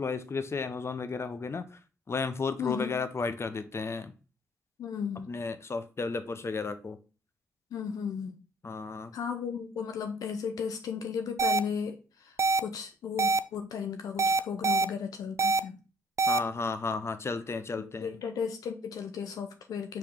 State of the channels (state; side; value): normal; both; correlation 0.58